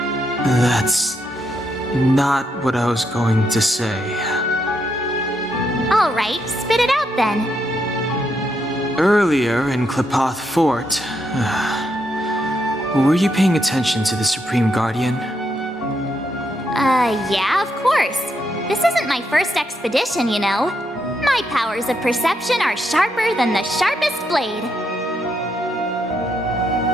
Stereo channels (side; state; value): both; normal; correlation 0.79